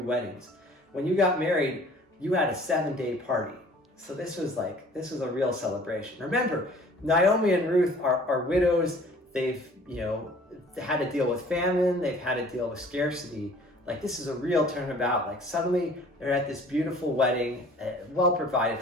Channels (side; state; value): both; normal; correlation 0.51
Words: When you got married, you had a 7-day party. So this was a real celebration. Remember, Naomi and Ruth are widows. They've, you know, had to deal with famine. They've had to deal with scarcity. Like, this is a real turnabout. Like, suddenly they're at this beautiful wedding, well provided